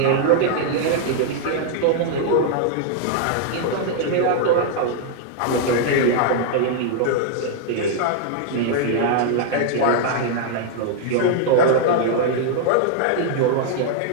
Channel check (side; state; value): both; different; correlation -0.01